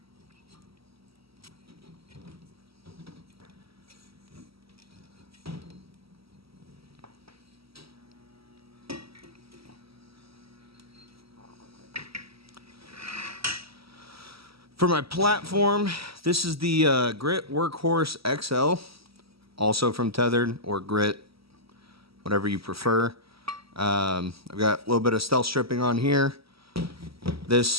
For my platform, this is the Grit Workhorse XL, also from Tethered, or Grit, whatever you prefer. I've got a little bit of stealth stripping on here.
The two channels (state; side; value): late; left; 0.76 ms